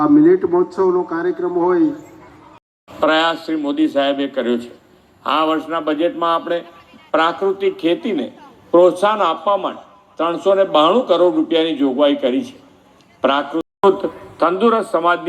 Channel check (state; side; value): identical; both; correlation 1.00